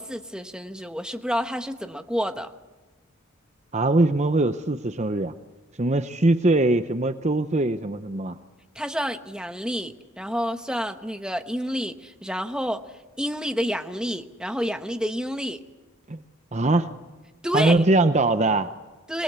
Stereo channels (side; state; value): both; normal; correlation 0.65